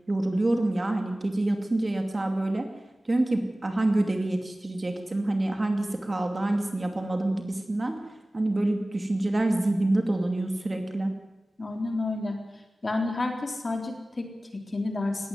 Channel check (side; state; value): both; normal; correlation 0.97